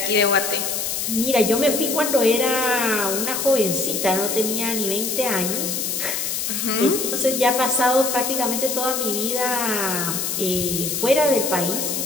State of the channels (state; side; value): noise; left; hiss, 2 dB below the sound